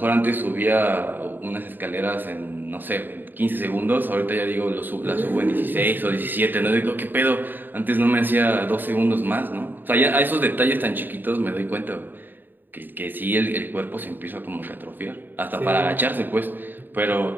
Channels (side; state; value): left; late; 0.092 ms